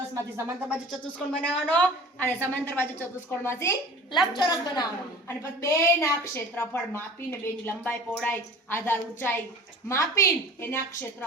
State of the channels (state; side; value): normal; both; correlation 0.42